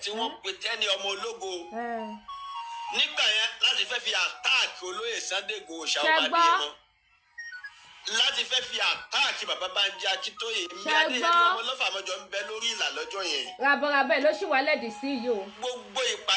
tí wọ́n pè tẹ́ni ọmọ ológo. Nígbà yẹn láti fẹ́ fi àtáàkì olóyè Sunday Igboho Ṣàwọ́ Adéyẹmọ. Láti fẹ́ fi àtáàkì bàbá Bánjí Akíntóyè. Bí Adéyẹmí ọmọ lọ́fà mọ́jọ ń bẹ lórí ìlà lọ́jọ́ yẹn. Rabọ̀rabẹ̀ ló ṣì wá lẹ́dí sí yìí o. Gbogbo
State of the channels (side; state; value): both; identical; correlation 1.00